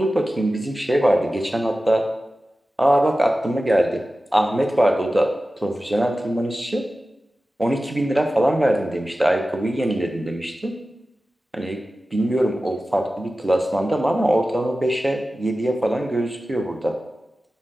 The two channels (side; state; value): both; normal; correlation 0.95